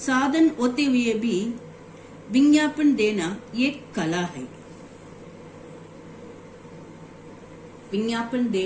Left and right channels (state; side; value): identical; both; correlation 1.00